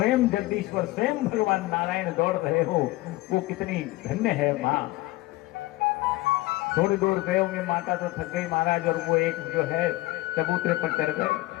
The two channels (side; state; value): right; quieter; 19.1 dB